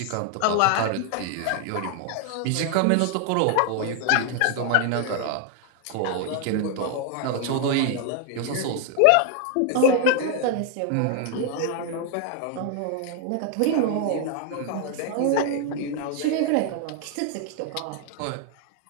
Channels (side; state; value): both; different; correlation 0.00